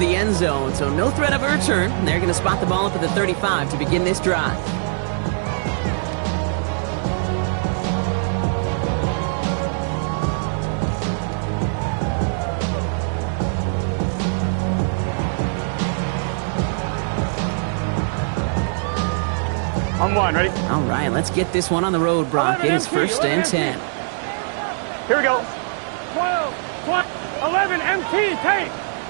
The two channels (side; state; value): left; silent; digital silence